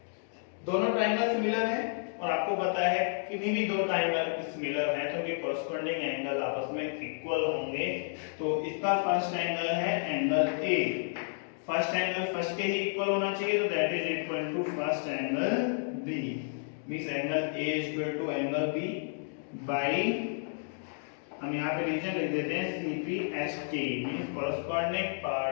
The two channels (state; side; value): silent; right; digital silence